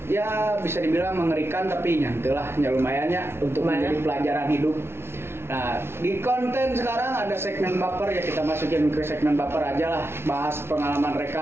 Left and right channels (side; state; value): left; late; 0.12 ms